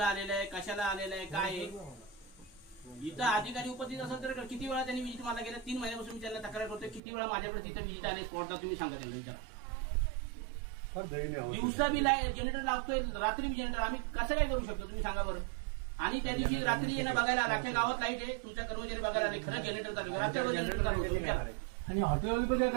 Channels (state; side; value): drops out; left; at 7.0 s